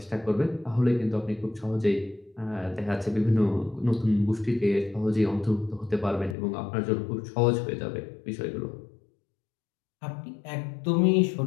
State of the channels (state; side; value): drops out; right; at 6.4 s